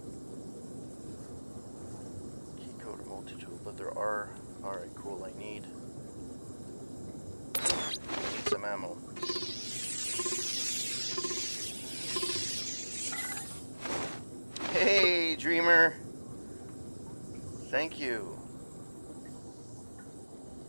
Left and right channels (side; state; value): both; inverted; correlation -1.00